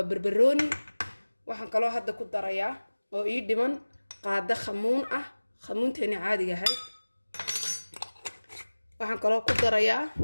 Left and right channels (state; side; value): inverted; both; correlation -1.00